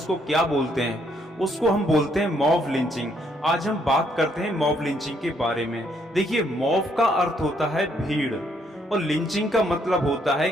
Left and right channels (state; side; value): normal; both; correlation 0.70